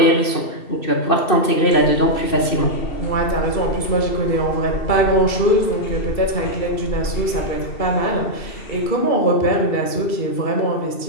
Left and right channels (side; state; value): right; late; 2.7 ms